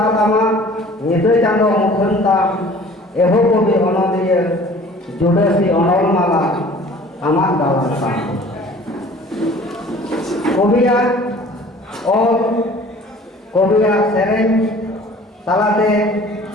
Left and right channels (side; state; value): both; normal; correlation 0.48